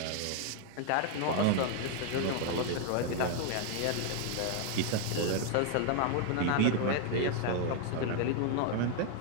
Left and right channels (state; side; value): different; both; correlation 0.00